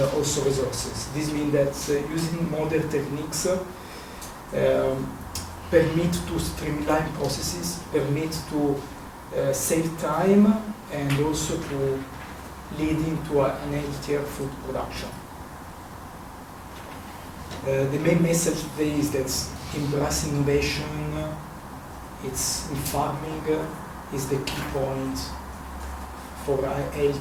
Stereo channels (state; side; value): identical; both; correlation 1.00